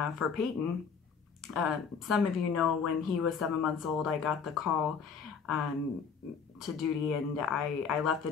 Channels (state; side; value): quieter; right; 6.2 dB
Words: for Peyton, some of you know when he was 7 months old, I got the call to duty, and I left the